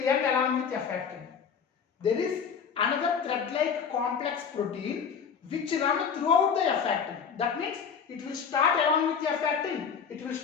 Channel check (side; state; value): right; quieter; 6.6 dB